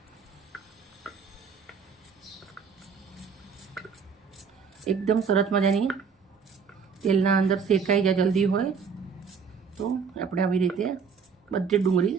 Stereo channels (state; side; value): quieter; left; 6.0 dB